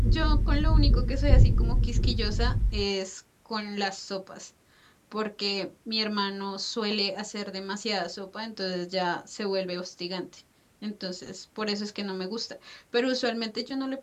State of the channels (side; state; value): both; identical; correlation 1.00